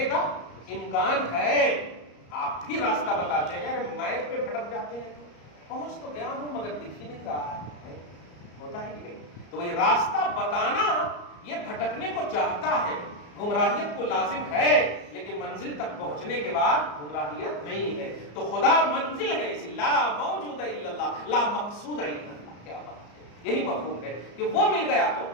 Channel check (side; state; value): right; late; 34 ms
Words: کا امکان ہے، آپ بھی راستہ بتاتے ہیں، ارے میپ پہ بھٹک جاتے ہیں، پہنچ تو گیا ہوں مگر دکھ ہی نہیں رہا ہے، ہوتا ہے کہ نہیں؟ تو یہ راستہ بتانا یہ بھٹکنے کو چاہتا ہے، گمراہیت کو لازم ہے، لیکن منزل تک پہنچنے کے بعد گمراہیت نہیں ہے۔ تو خدا منزل ہے، اسی لا موجود الا اللہ، لا مقصود الا اللہ۔ کیا بات ہے! یہی مفہوم ہے کہ وہ مل گیا تو،